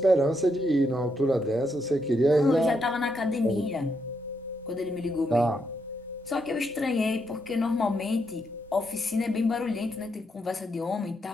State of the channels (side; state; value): both; normal; correlation 0.79